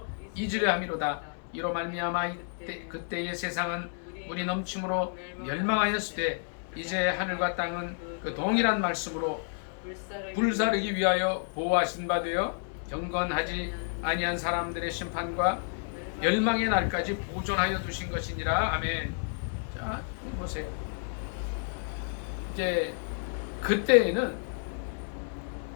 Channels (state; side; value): silent; right; 57 dB below the other